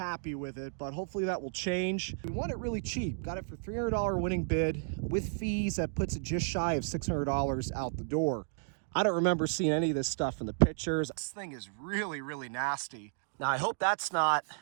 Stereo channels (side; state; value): left; silent; digital silence